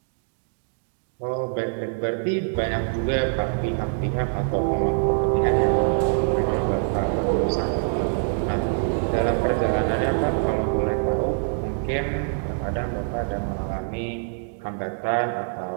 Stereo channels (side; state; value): left; silent; digital silence